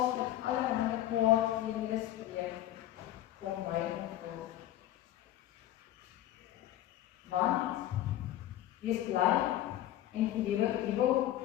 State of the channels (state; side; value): quieter; right; 13.3 dB